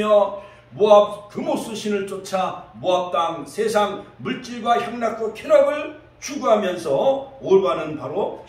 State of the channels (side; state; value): both; identical; correlation 1.00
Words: 모압 금오스 신을 쫓아 모압 땅 세상 물질과 향락과 쾌락을 추구하면서 오르바는 바로